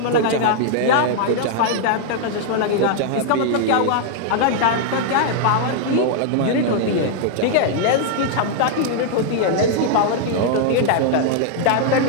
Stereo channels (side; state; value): both; different; correlation -0.01